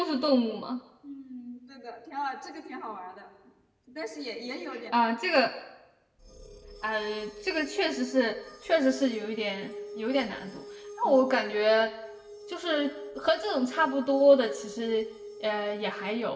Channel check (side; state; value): both; identical; correlation 1.00